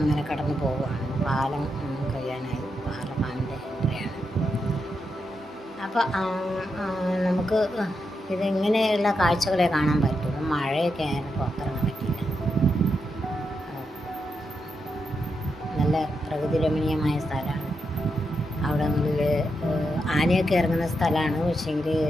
കടന്നു പോവുകയാണ്. പാലം കഴിയാനായി ആർല ഫാമിൻ്റെ എൻട്രിയാണ്. അപ്പോൾ നമുക്ക് ഇതിങ്ങനെയുള്ള കാഴ്ചകളെ കാണാൻ പറ്റുള്ളൂ. മഴയൊക്കെ ആയാലും പുറത്തിറങ്ങാൻ പറ്റില്ല. നല്ല പ്രകൃതി രമണീയമായ സ്ഥലമാണ്. അവിടങ്ങളിൽ ആനയൊക്കെ ഇറങ്ങുന്ന സ്ഥലമാണ്. പക്ഷേങ്കിൽ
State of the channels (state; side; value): normal; both; correlation 0.84